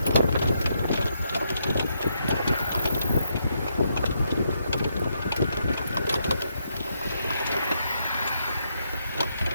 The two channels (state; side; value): inverted; both; correlation -0.78